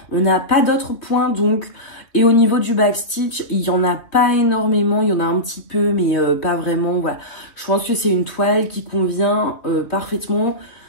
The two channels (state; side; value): late; right; 3.0 ms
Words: On n'a pas d'autres points donc. Et au niveau du backstitch, il n'y en a pas énormément, il y en a un petit peu mais pas vraiment. Voilà. Je pense que c'est une toile qui convient parfaitement